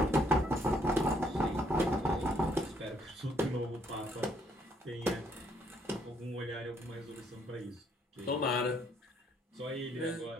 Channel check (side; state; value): both; normal; correlation 0.69